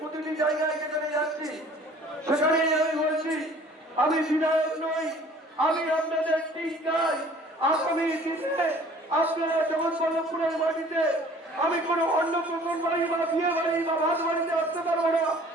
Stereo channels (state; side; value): normal; both; correlation 0.51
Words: প্রতিটি জায়গায় যেখানে যাচ্ছি সেখানেই আমি বলছি আমি বিধায়ক নই, আমি আপনাদের টিকাই। আগামী দিনে আপনারা জগৎবল্লভপুরের মাটিতে আমি কোনো অন্য প্রকল্প বাড়ি বা বিয়ে বাড়ি বা ভাত বাড়িতে আসতে পারবো না,